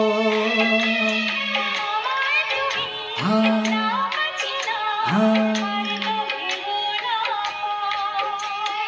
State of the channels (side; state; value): both; identical; correlation 1.00